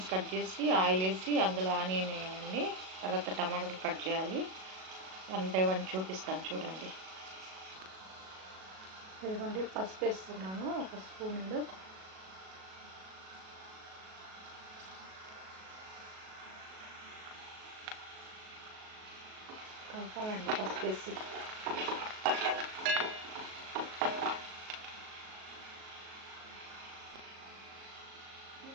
కట్ చేసి ఆయిల్ వేసి అందులో ఆనియన్ వేయాలండి. తర్వాత టమాటాలు కట్ చేయాలి. 1 బై 1 చూపిస్తాను చూడండి. ఇదిగోండి పసుపు వేస్తున్నాను, 1 స్పూన్లు. కలపాలండి పసుపు వేసి.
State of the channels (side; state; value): left; late; 37 ms